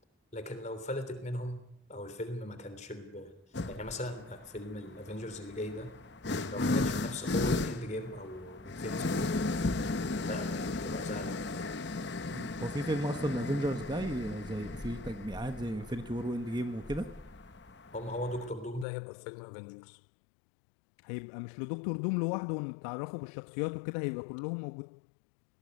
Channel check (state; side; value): drops out; right; at 18.9 s